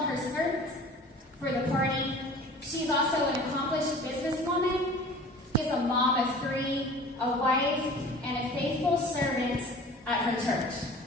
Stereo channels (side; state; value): both; normal; correlation 0.43